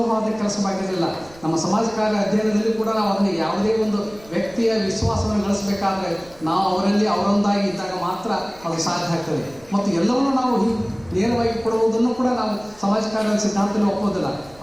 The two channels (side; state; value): right; noise; rumble, 24 dB below the sound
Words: ಕೆಲಸವಾಗಿರಲಿಲ್ಲ. ನಮ್ಮ ಸಮಾಜ ಕಾರ್ಯ ಅಧ್ಯಯನದಲ್ಲಿ ಕೂಡ ನಾವು ಅದನ್ನು ಯಾವುದೇ ಒಂದು ವ್ಯಕ್ತಿಯ ವಿಶ್ವಾಸವನ್ನು ಗಳಿಸಬೇಕಾದ್ರೆ ನಾವು ಅವರಲ್ಲಿ ಅವರೊಂದಾಗಿ ಇದ್ದಾಗ ಮಾತ್ರ ಅದು ಸಾಧ್ಯ ಆಗ್ತದೆ. ಮತ್ತು ಎಲ್ಲವನ್ನೂ ನಾವು ನೇರವಾಗಿ ಕೊಡುವುದನ್ನು ಕೂಡ ನಾವು ಸಮಾಜ ಕಾರ್ಯದ ಸಿದ್ಧಾಂತದಲ್ಲಿ ಒಪ್ಪೋದಿಲ್ಲ.